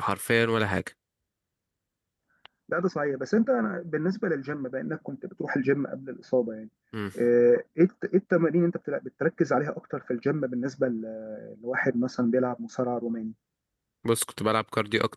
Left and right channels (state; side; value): identical; both; correlation 1.00